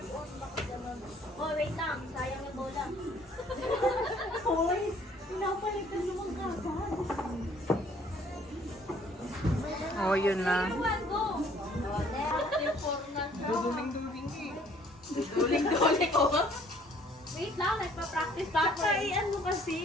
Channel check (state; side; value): normal; both; correlation 0.59